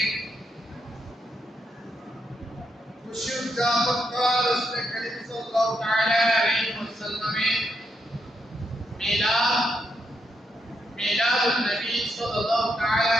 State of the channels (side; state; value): both; normal; correlation 0.80